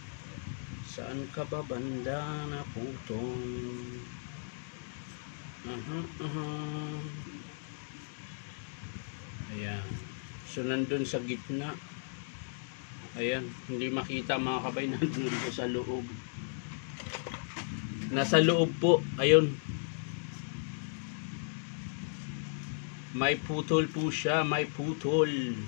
Saan ka ba banda na putol? Ayan. So, nandun sa gitna. Ayan. Hindi makita mga kabay. Nandun po sa loob. Nasa loob po. Ayun. May putol po siya. May putol.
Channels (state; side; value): silent; right; digital silence